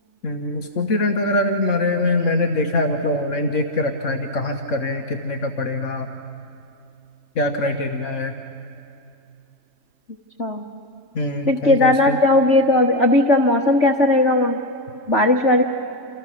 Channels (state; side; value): late; right; 3.6 ms